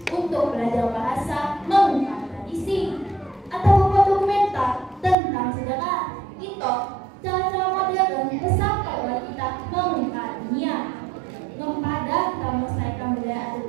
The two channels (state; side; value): drops out; left; at 5.2 s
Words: untuk belajar bahasa, mengungkap tradisi, atau membuat dokumenter tentang sejarah. Itu cara-cara modern sampai oleh kita mengungkap dunia. Kepada kita melestarikan budaya adat